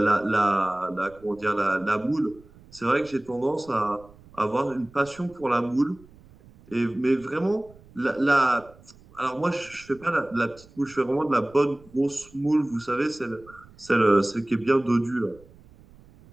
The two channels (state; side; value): noise; right; rumble, 25 dB below the sound